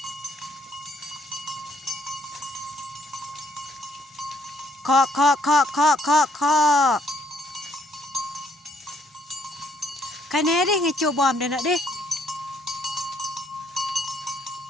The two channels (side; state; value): both; normal; correlation 0.68